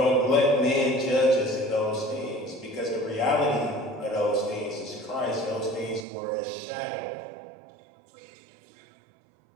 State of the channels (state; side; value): drops out; left; at 6.1 s